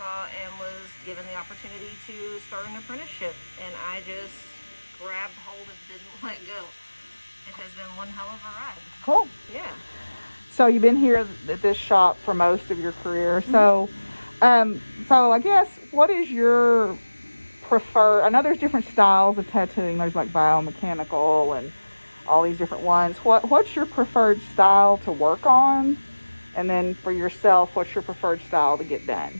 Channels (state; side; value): inverted; both; correlation -1.00